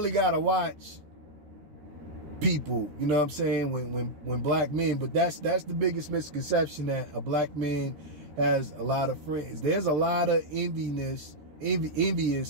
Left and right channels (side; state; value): left; late; 13 ms